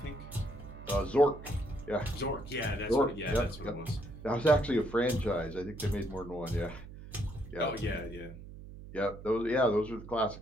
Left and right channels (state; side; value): noise; right; hum, 14 dB below the sound